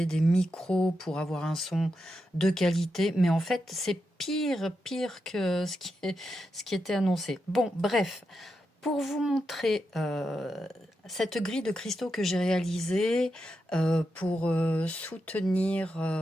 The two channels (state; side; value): normal; both; correlation 0.86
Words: des micros pour avoir un son de qualité, mais en fait c'est pire que ce qui était annoncé. Bon bref, pour vous montrer cette grille de cristaux que j'ai réalisée pour soutenir